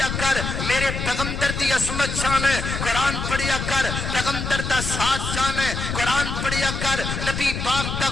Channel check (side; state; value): left; noise; rumble, 4 dB below the sound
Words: کر، میرے پیغمبر دی عظمت چاہنے، قرآن پڑھیا کر، پیغمبر دا ساتھ چاہنے، قرآن پڑھیا کر، نبی پاک دا